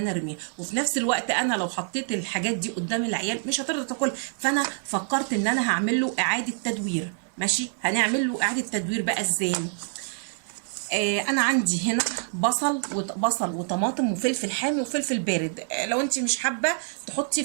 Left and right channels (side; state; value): left; silent; 61 dB below the other